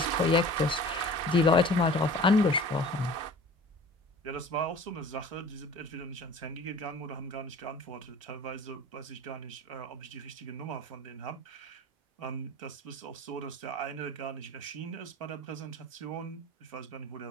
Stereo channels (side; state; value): both; normal; correlation 0.43